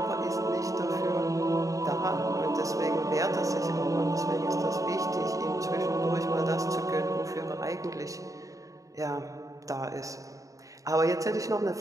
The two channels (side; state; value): left; late; 0.16 ms